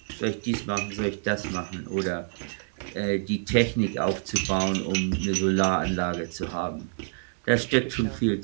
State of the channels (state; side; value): silent; left; digital silence